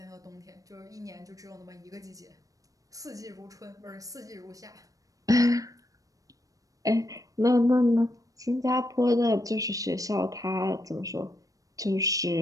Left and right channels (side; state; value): left; late; 0.17 ms